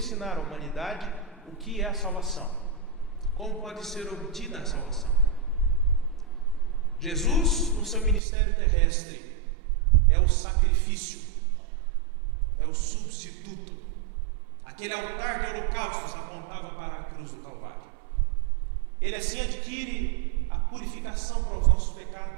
à humanidade o que é a salvação, como pode ser obtida a salvação. Jesus, no seu ministério terrestre, é o sacrifício, é o substituto. Aquele altar de holocaustos apontava para a cruz do Calvário. Ele assim adquire a purificação para os nossos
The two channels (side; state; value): left; drops out; at 8.2 s